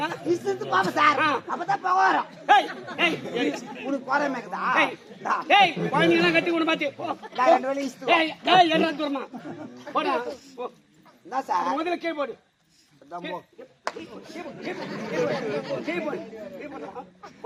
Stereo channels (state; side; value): identical; both; correlation 1.00